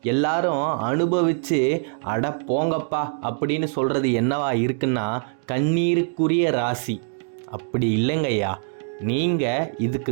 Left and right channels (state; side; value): silent; left; 63 dB below the other